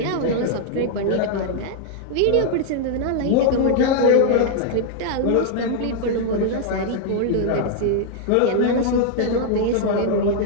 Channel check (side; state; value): both; different; correlation -0.01